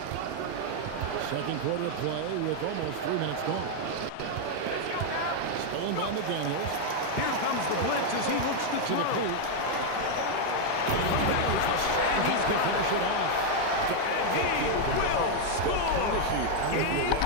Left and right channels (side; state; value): both; different; correlation 0.00